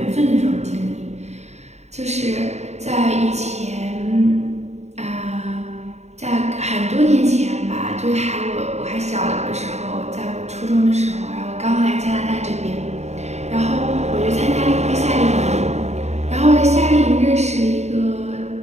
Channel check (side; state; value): left; late; 0.32 ms